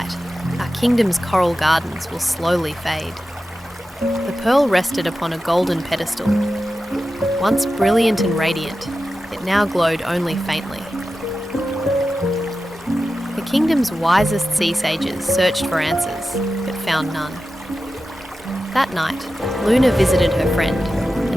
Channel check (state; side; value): normal; both; correlation 0.93